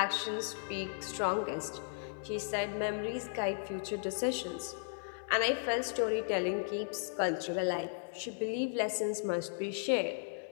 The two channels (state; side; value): silent; right; 54 dB below the other